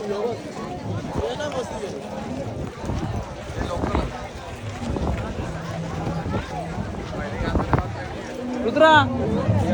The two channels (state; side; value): identical; both; correlation 1.00